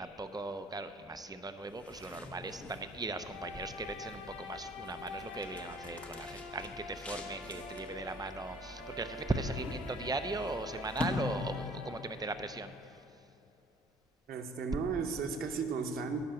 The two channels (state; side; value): normal; both; correlation 0.55